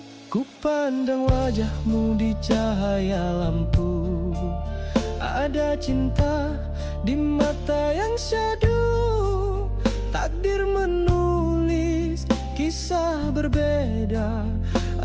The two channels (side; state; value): both; identical; correlation 1.00